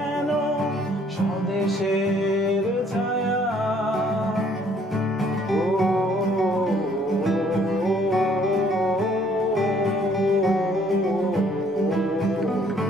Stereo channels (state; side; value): normal; both; correlation 0.62